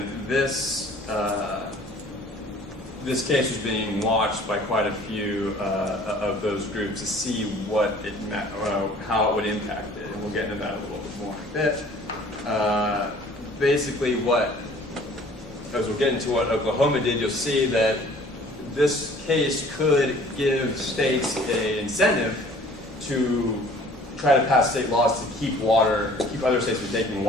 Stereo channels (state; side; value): normal; both; correlation 0.52